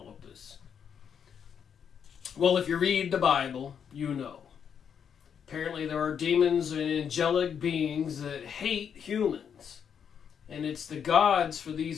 of this? Well, if you read the Bible, you know. Apparently there are demons and angelic beings that hate humans. And it's the gods for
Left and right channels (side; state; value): right; quieter; 7.6 dB